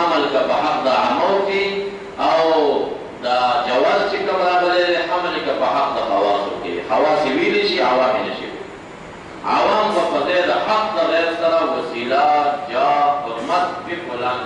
که په حق د عامو کې او دا جواز چې کوم راغلی دی حمل که په حق د خواصو کې. خواص یې ویلی شي، عوام یې نشي. عوام به په ځای د حق د غیر سره وسیله، جاه، حرمت په فلان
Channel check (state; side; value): identical; both; correlation 1.00